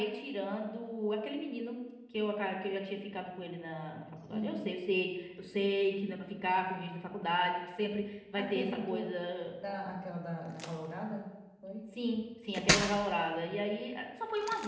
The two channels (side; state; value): both; identical; correlation 1.00